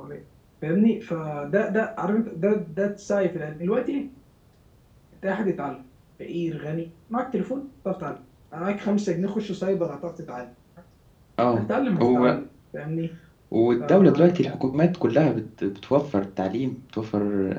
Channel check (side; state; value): both; identical; correlation 1.00